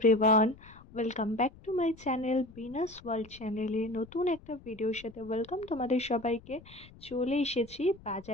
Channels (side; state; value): left; noise; rumble, 22 dB below the sound